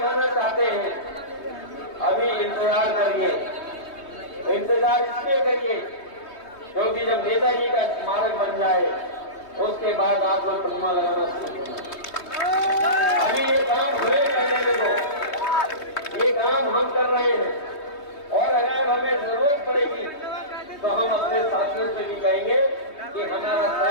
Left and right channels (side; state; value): right; late; 3.3 ms